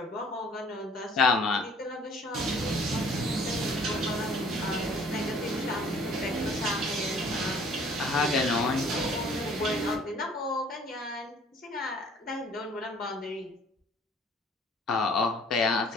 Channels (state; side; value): normal; both; correlation 0.55